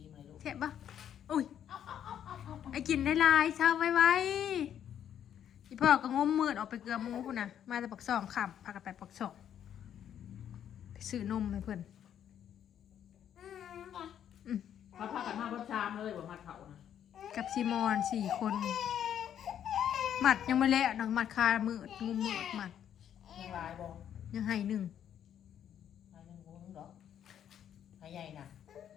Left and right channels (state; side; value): quieter; right; 9.7 dB